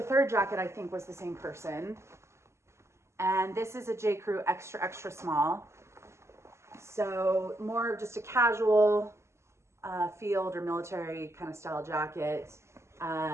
third jacket, I think was the same person. And this is a J. Crew extra, extra small. So more of just a casual field or military kind of style jacket.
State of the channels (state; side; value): late; left; 0.13 ms